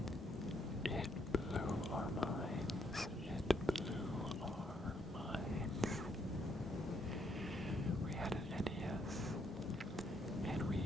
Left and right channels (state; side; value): normal; both; correlation 0.73